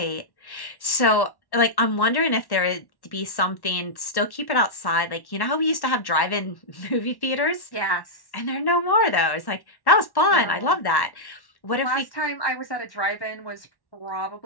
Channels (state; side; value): late; right; 1.1 ms